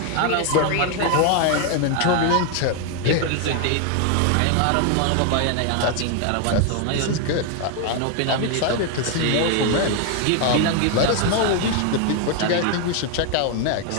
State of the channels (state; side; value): different; both; correlation 0.01